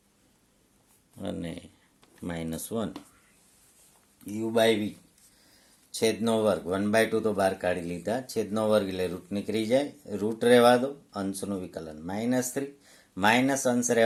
અને -1 u/v છેદનો વર્ગ 1/2 તો બહાર કાઢી લીધા, છેદનો વર્ગ એટલે રૂટ નીકળી જાય, રૂટ રહેવા દો, અંશનું વિકલન -3 માઇનસ અંશ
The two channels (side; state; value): both; identical; correlation 1.00